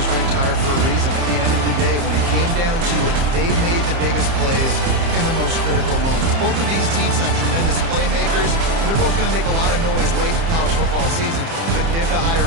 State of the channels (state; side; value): late; left; 30 ms